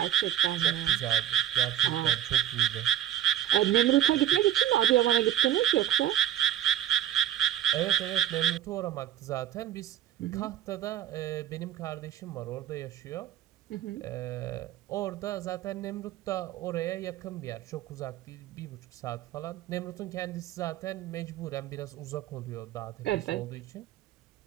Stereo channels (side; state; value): left; quieter; 11.2 dB